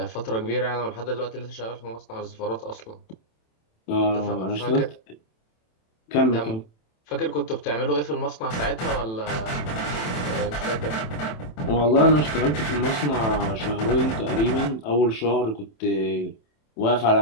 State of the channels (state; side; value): late; right; 27 ms